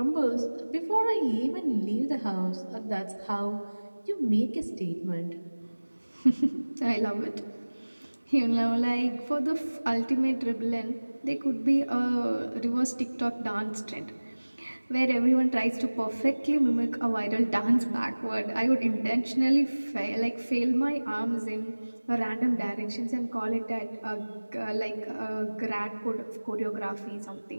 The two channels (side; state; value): both; inverted; correlation -1.00